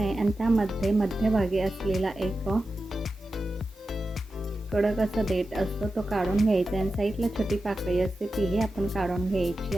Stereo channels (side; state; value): right; noise; hiss, 30 dB below the sound